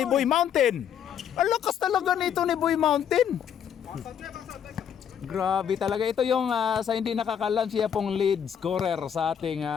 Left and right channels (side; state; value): right; quieter; 8.5 dB